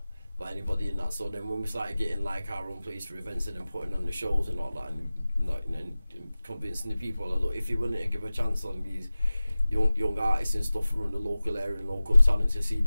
by anybody in that. So then when we started getting like our own place for events and then putting on the shows and all that, and convincing the people, like, look, if you're willing to give a chance on these young artists and stuff from the local area and local talent, to see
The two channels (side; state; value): both; inverted; correlation -0.97